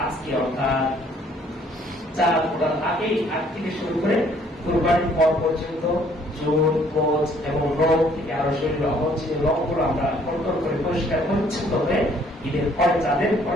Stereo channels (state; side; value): normal; both; correlation 0.62